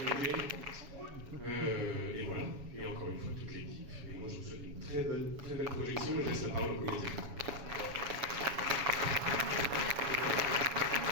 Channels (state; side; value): late; left; 7.2 ms